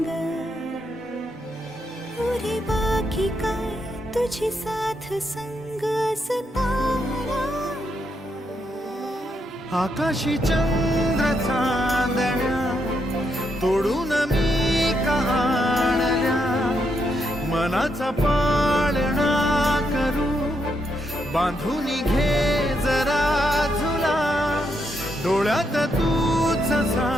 पुरे बाकी काय तुझी साथ संग असताना, आकाशी चंद्र चांदण्या तोडून मी आणल्या, मनाचा पाळणा करू बांधून घे जरा झुला, डोळ्यात तूच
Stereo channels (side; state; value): both; normal; correlation 0.79